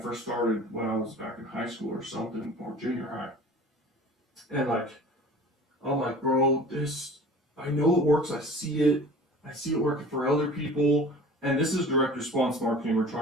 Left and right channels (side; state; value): both; normal; correlation 0.42